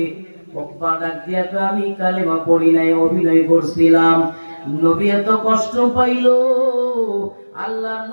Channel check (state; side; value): inverted; both; correlation -1.00